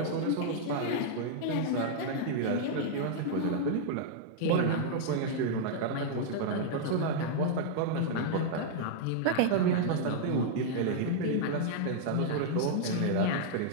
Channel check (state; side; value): different; both; correlation -0.01